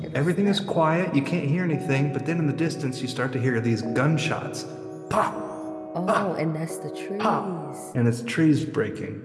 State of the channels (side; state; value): both; identical; correlation 1.00